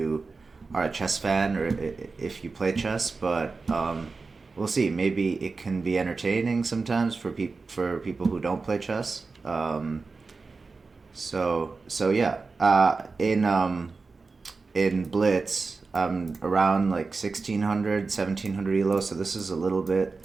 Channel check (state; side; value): quieter; left; 4.2 dB